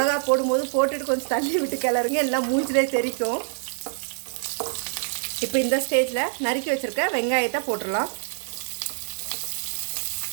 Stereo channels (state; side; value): silent; left; digital silence